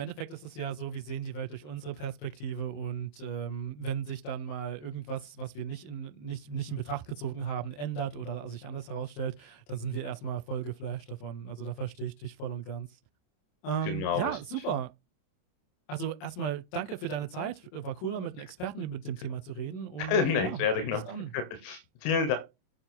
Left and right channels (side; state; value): right; late; 27 ms